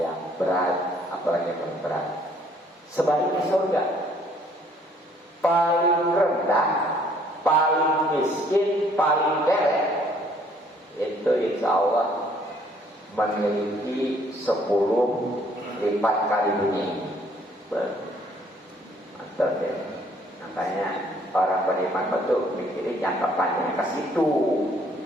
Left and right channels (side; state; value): both; normal; correlation 0.62